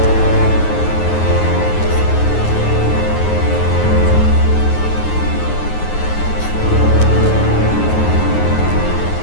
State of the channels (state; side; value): late; right; 9.5 ms